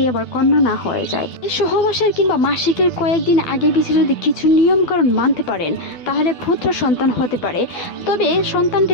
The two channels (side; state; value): right; late; 12 ms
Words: আবার কন্যা না হয়ে যায়। এই সহবাসের কিংবা মাসিকের কয়েকদিন আগে পিছিয়ে যদি কিছু নিয়মকানুন মানতে পারেন তাহলে পুত্র সন্তান হতে পারে। তবে সন্তানটি